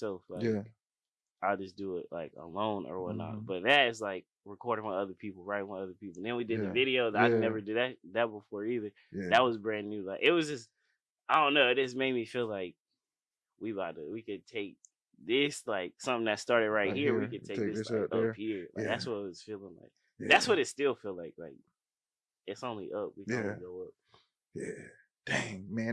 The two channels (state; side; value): identical; both; correlation 1.00